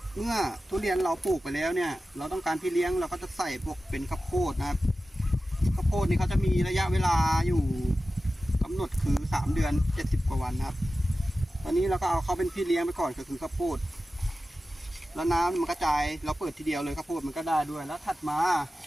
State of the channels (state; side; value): normal; both; correlation 0.94